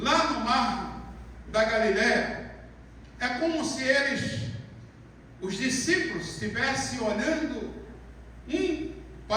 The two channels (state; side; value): identical; both; correlation 1.00